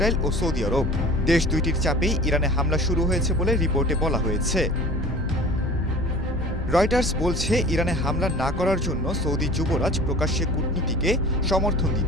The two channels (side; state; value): both; normal; correlation 0.42